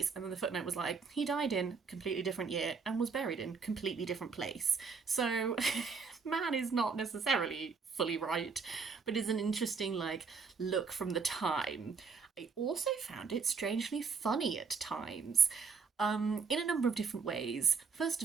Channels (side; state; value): left; quieter; 5.3 dB